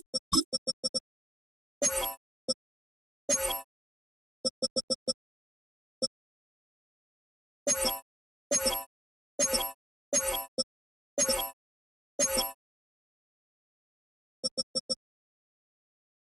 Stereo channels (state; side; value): normal; both; correlation 0.91